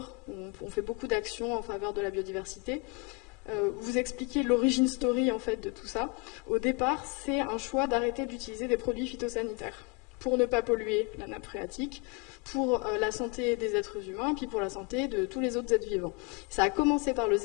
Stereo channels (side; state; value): right; quieter; 30.5 dB